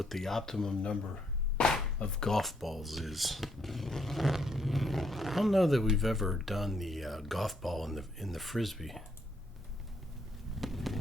the optimum number of golf balls is. I don't know that we've ever done the golf ball in the frisbee.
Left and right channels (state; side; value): normal; both; correlation 0.73